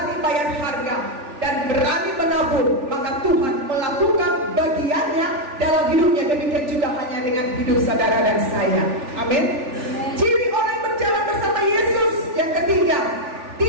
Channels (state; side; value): late; left; 3.4 ms